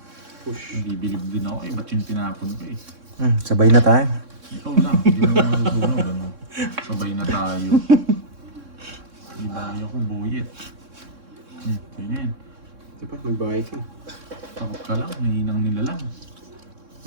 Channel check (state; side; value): late; left; 3.6 ms